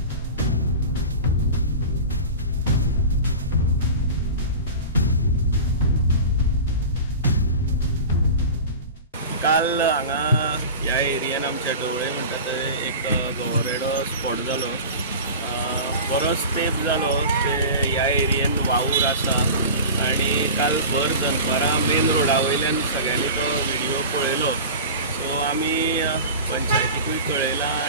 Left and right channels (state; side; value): inverted; both; correlation -0.33